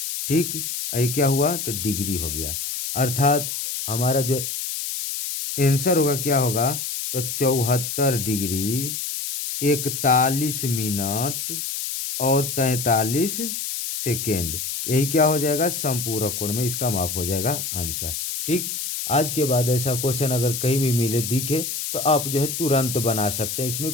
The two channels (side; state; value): left; noise; hiss, 4 dB below the sound